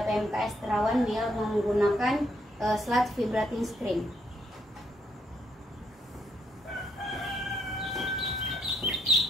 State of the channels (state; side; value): normal; both; correlation 0.73